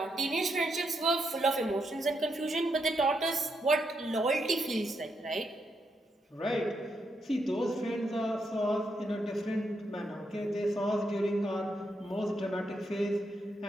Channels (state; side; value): normal; both; correlation 0.80